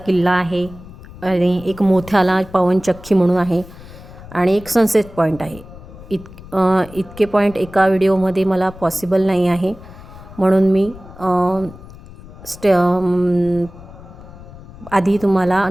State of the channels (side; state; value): left; noise; rumble, 18 dB below the sound